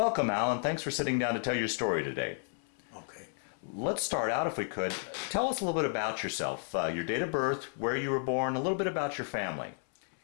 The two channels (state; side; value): silent; right; 56 dB below the other